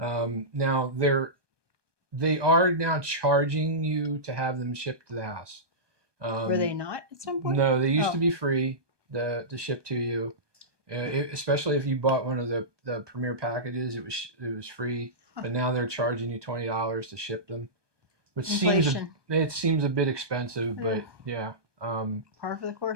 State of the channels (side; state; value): left; late; 1.2 ms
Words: Now they are now charging you to have them shipped to the house. Were they not at some point? No, they used to be free to ship to you. Especially if you bought one of the premier packages, it was free. Huh. But now they're charging you $20 to ship them, which Inflation. seems a bit expensive, but yeah. Par for the